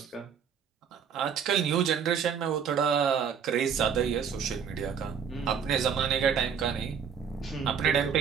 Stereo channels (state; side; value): quieter; left; 7.2 dB